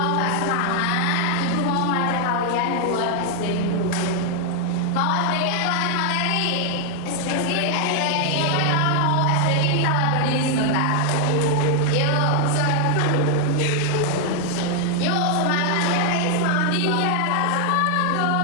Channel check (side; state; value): both; different; correlation 0.00